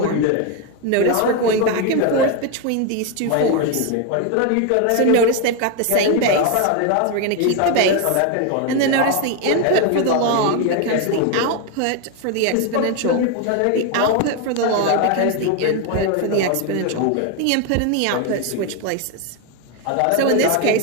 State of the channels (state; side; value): different; both; correlation 0.01